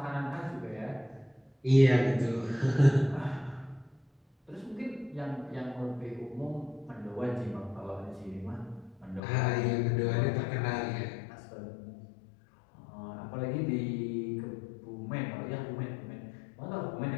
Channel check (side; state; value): right; drops out; at 9.2 s